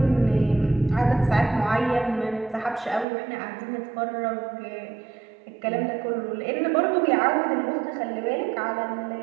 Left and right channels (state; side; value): drops out; left; at 3.1 s